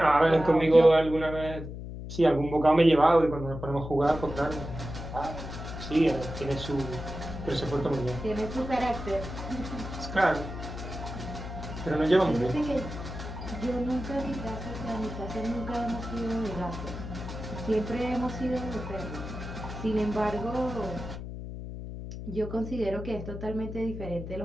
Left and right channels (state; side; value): noise; left; hum, 9 dB below the sound